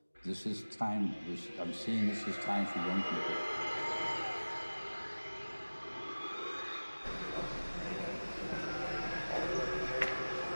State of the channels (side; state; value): both; inverted; correlation -1.00